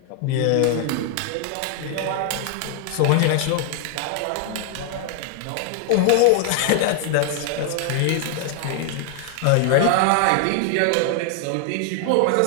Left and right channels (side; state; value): both; different; correlation 0.00